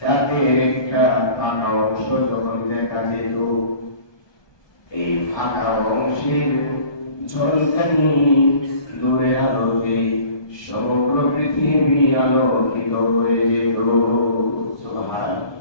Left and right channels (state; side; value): late; right; 1.2 ms